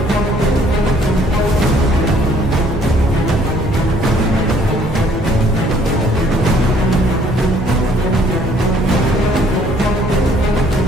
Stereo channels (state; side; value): normal; both; correlation 0.61